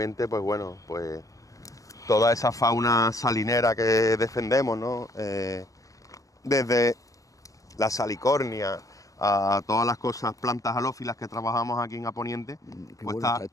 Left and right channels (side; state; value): right; late; 0.16 ms